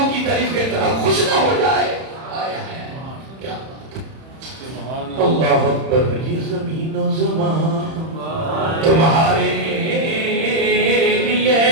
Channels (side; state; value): left; late; 31 ms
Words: کی تعریف کے طرح خوش نہ ہو جائے کیا بات اللہ اکبر یہ زمین و زمان تمہارے لیے